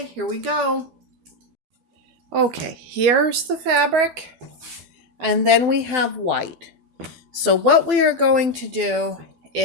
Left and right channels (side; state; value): left; late; 13 ms